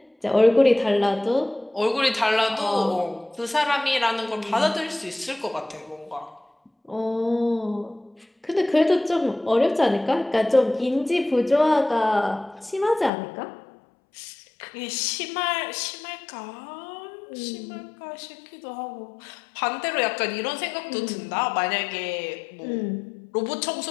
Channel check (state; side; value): drops out; right; at 13.1 s